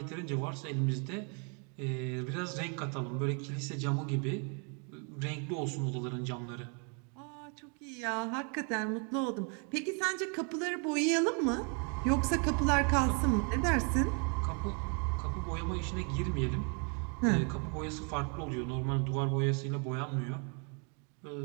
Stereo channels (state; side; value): quieter; left; 38.2 dB